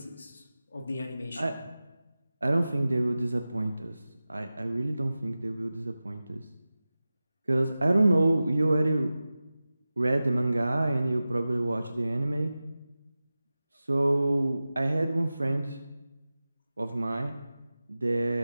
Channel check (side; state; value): both; inverted; correlation -0.96